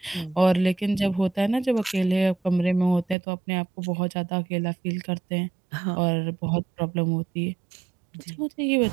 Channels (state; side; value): drops out; left; at 3.2 s